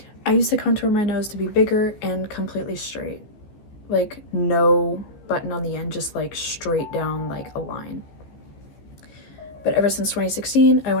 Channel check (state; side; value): late; right; 14 ms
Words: I used to contour my nose to be bigger and completely straight. Like, no button on the end, just like straight down like a line. But ever since 2016, I